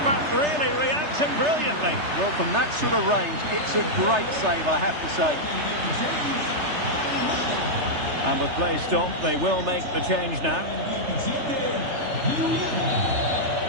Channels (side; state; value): left; late; 3.3 ms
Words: really reacting brilliantly. Well, from that sort of range, it's a great save, I have to say. And with play stopped, they will make the change now.